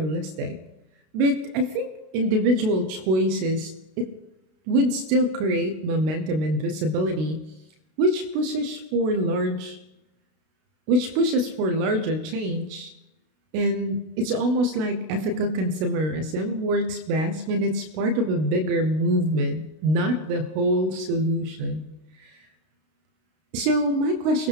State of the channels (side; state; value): left; late; 32 ms